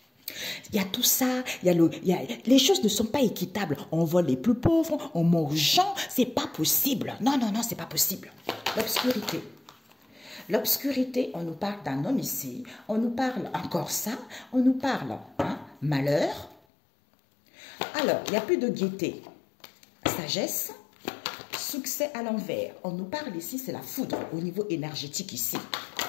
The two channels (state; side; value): drops out; right; at 16.6 s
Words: Il y a tout ça, les choses ne sont pas équitables. On vole les plus pauvres, on mange aux gens, c'est pas possible. Non, non, non, c'est pas possible. L'obscurité. L'obscurité, on nous parle d'un homme ici, on nous parle encore ça, on nous parle malheur. Alors, il n'y a plus de gaieté, sagesse, succès à l'envers. On nous parle ici, c'est la foudre au niveau énergétique ici.